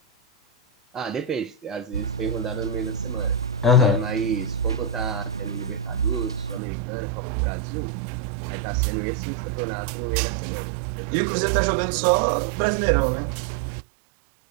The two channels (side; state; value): left; drops out; at 6.6 s